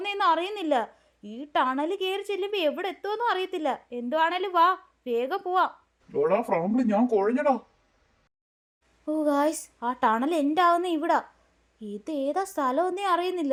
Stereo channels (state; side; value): identical; both; correlation 1.00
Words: അറിയുന്നില്ല. ഈ ടണൽ കയറി ചെല്ലുമ്പോൾ എവിടെ എത്തുമെന്നും അറിയത്തില്ല. എന്തുവാണേലും വാ, വേഗം പോവാം. എടാ ഫ്രാങ്ക്ലിൻ, ഞാൻ കുഴഞ്ഞടാ. ഓ ഗായ്സ്, ആ ടണൽ എൻ്റെ ആവുന്ന ഇവിടാ. ഇത് ഏതാ സ്ഥലമൊന്നേ